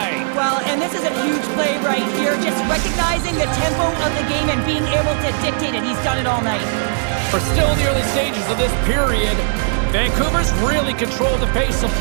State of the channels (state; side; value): silent; left; digital silence